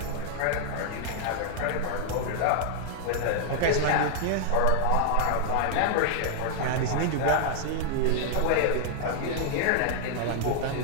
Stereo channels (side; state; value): both; different; correlation -0.01